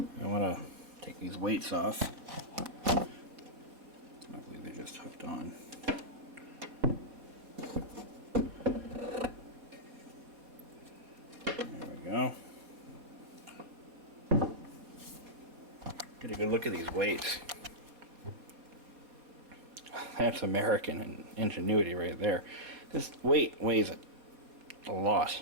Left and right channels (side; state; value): left; late; 4.3 ms